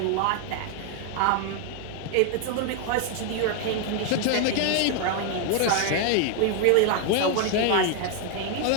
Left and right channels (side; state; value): both; different; correlation 0.01